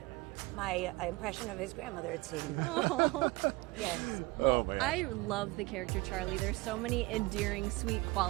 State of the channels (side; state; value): left; quieter; 22.6 dB